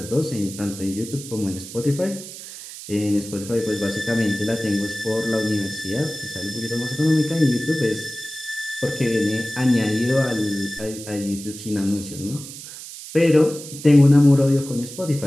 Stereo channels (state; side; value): noise; right; hiss, 13 dB below the sound